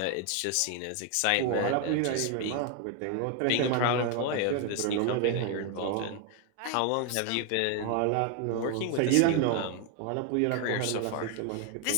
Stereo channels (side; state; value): both; different; correlation 0.01